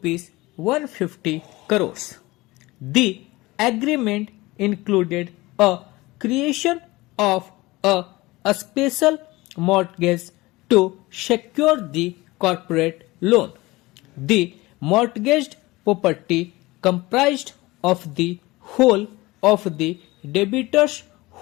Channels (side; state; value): right; quieter; 20.8 dB